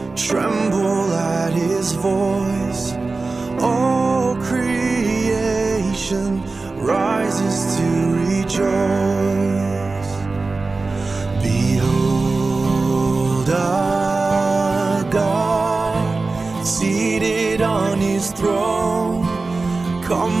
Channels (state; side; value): quieter; left; 3.7 dB